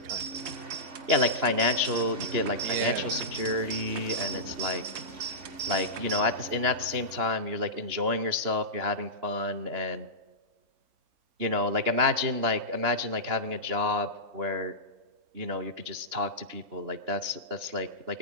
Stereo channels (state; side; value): late; left; 3.0 ms